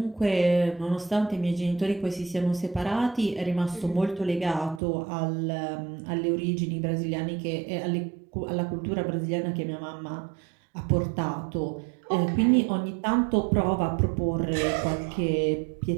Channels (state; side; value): drops out; left; at 4.8 s